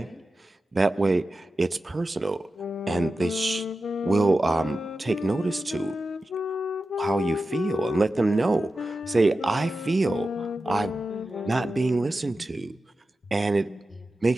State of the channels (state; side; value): normal; both; correlation 0.92